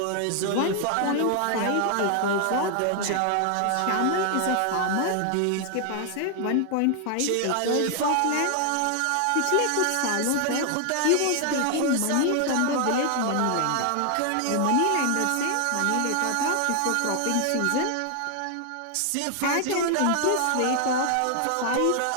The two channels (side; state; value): both; different; correlation 0.00